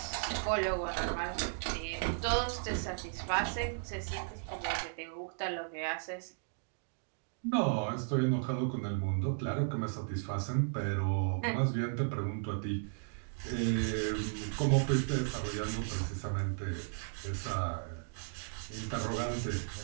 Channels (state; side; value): silent; left; digital silence